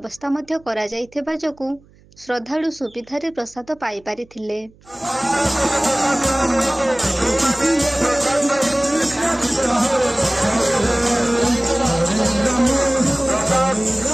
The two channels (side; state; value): right; noise; hum, 28 dB below the sound